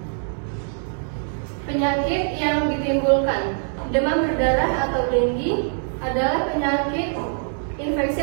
Penyakit yang ditimbulkan demam berdarah atau dengue adalah penyakit infeksi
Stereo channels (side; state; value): left; silent; digital silence